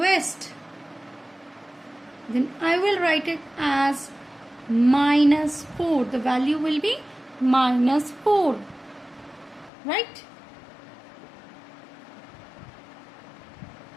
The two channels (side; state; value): right; drops out; at 9.7 s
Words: then I will write it as minus 4. The value will be minus 4. Right?